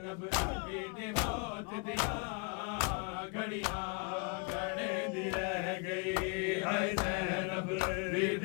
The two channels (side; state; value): right; quieter; 33.9 dB